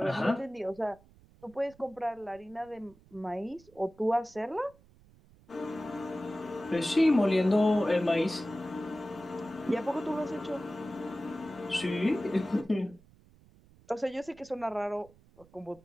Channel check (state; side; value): noise; right; rumble, 27 dB below the sound